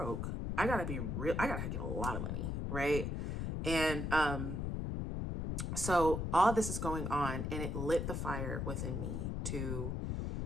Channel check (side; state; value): left; noise; rumble, 2 dB below the sound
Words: I gotta be real. I gotta get a lot of money. Right. And, so all this is going on and it lit the fire within me to